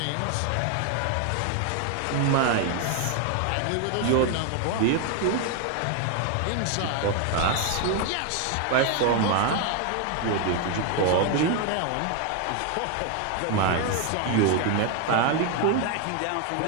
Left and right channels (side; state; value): both; different; correlation 0.01